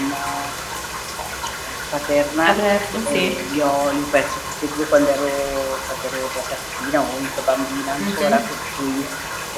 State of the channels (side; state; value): both; identical; correlation 1.00